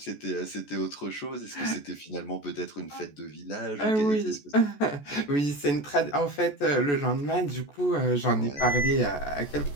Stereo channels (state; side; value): late; right; 14 ms